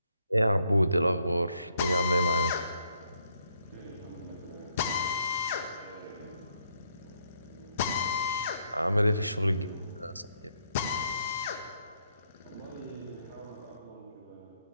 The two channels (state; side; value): inverted; both; correlation -0.73